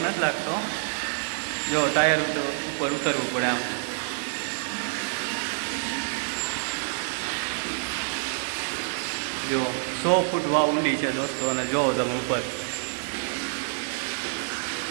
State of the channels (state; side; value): silent; left; digital silence